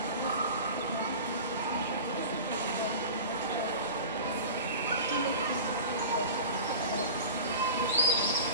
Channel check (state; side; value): inverted; both; correlation -0.35